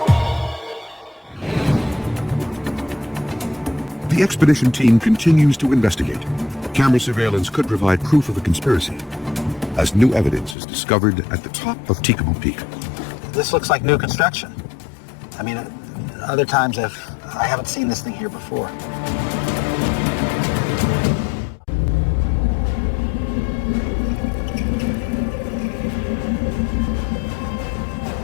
The expedition team continues to investigate. Camera surveillance could provide proof of the conspiracy, as new evidence is discovered at the top of Documen Peak. This looks like new construction. I mean, other times I haven't seen this thing here before.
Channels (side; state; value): right; drops out; at 10.6 s